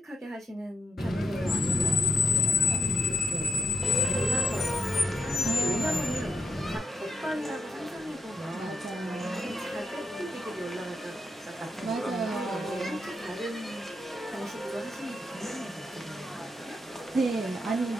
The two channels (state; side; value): normal; both; correlation 0.79